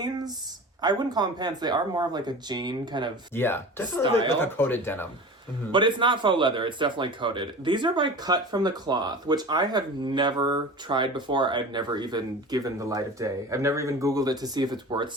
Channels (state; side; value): normal; both; correlation 0.35